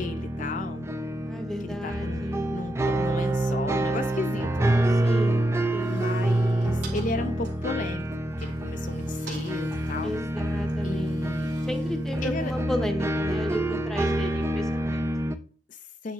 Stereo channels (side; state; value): both; normal; correlation 0.83